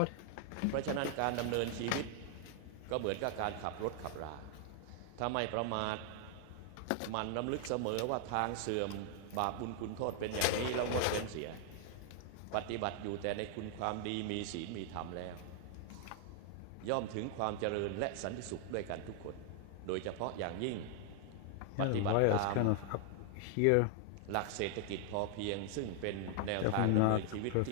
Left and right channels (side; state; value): both; different; correlation 0.00